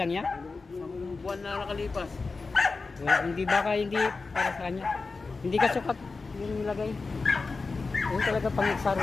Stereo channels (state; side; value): quieter; right; 4.1 dB